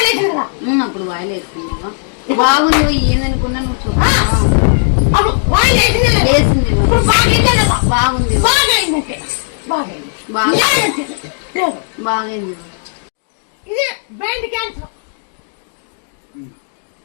కదా అప్పుడు వాయిల్ వేసుకున్నావా బాగుంది ఏందనుకున్నా నువ్వు చూడ అప్పుడు వాయిల్ వేసింది వేసింది బాగుంది బాగైందంటే బాగైంది ఇది బ్రెయిన్ క్యాన్సర్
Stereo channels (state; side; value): silent; right; digital silence